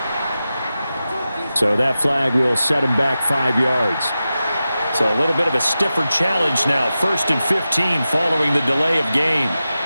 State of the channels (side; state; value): both; inverted; correlation -0.93